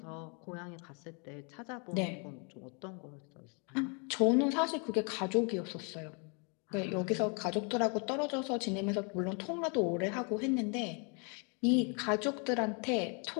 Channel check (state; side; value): quieter; right; 36.2 dB